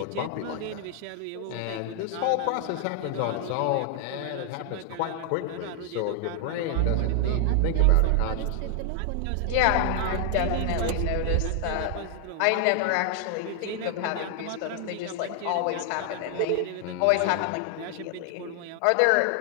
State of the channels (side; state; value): both; different; correlation 0.00